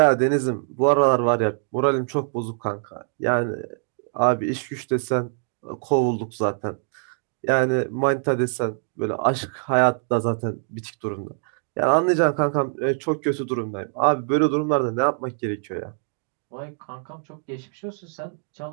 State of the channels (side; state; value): left; silent; digital silence